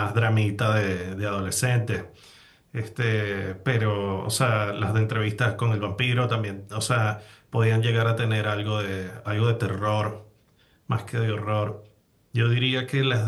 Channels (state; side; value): identical; both; correlation 1.00